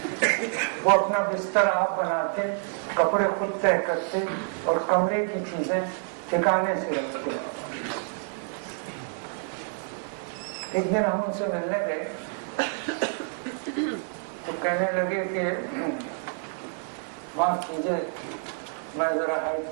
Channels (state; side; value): silent; left; 60 dB below the other